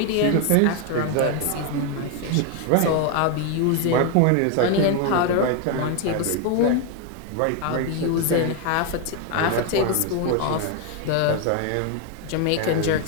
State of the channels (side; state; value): both; different; correlation 0.01